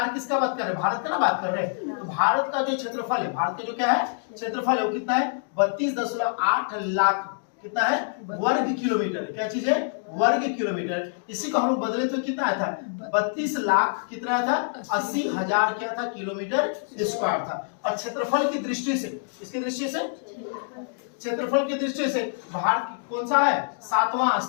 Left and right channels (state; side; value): silent; right; digital silence